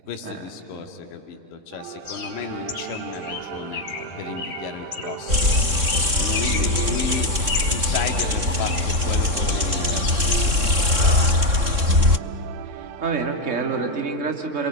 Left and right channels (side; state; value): left; late; 3.6 ms